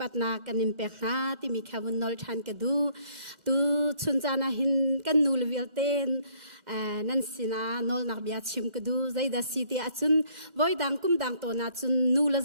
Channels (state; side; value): late; left; 1.4 ms